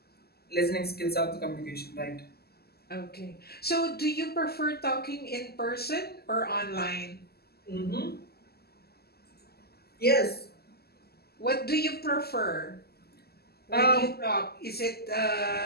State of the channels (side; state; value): right; late; 0.46 ms